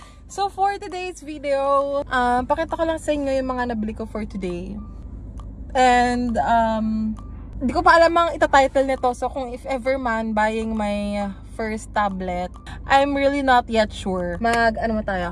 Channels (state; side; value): identical; both; correlation 1.00